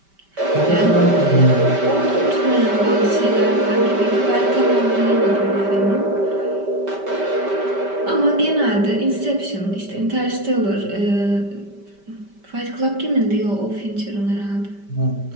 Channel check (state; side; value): late; left; 5.1 ms